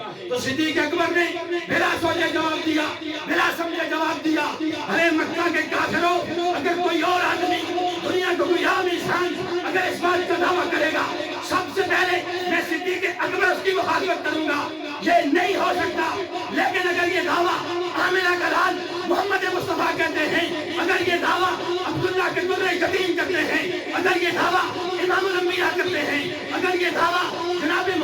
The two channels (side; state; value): both; identical; correlation 1.00